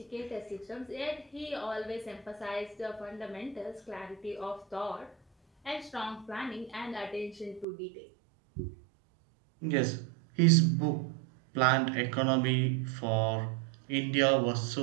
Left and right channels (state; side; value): drops out; left; at 7.7 s